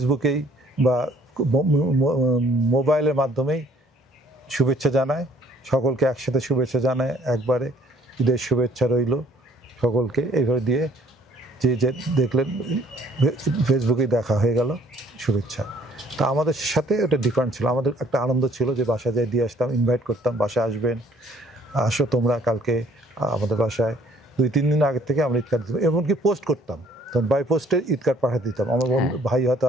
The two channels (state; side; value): normal; both; correlation 0.59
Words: বা মোবাইলের মাধ্যমেই শুভেচ্ছা জানায়, সকলকে একসাথে শুভেচ্ছা জানায় একবারে, ঈদের শুভেচ্ছা রইল সকলকে, এইভাবে দিয়ে যে যে দেখলেন ফেসবুকেই দেখা হয়ে গেল শুভেচ্ছা। তা আমাদের সাথে ওটা ডিফারেন্ট ছিল, আমাদের একটা আনন্দ ছিল যে বাসায় যাই দিয়ে আসতাম, ইনভাইট করতাম, বাসায় আসবেন, আসো তোমরা কালকে আমাদের বাসায়। 2-3 দিন আগের থেকে আমরা ঈদ কার্ড দিতাম, এমনকি পোস্ট করতাম, তখন বাই পোস্টে ঈদ কার্ড পাঠিয়ে দিতাম। আমার বন্ধু ভাই হয়তো